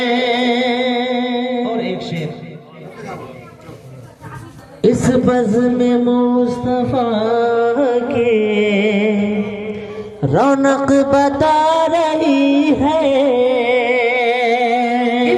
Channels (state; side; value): identical; both; correlation 1.00